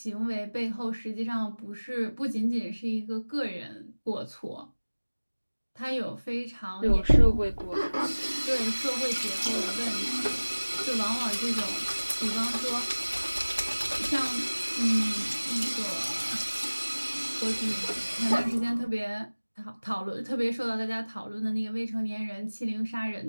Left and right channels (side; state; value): both; inverted; correlation -1.00